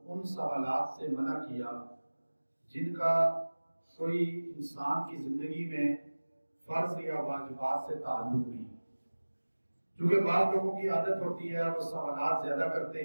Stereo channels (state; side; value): inverted; both; correlation -1.00